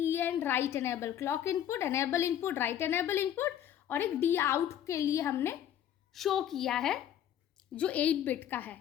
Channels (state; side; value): quieter; right; 10.5 dB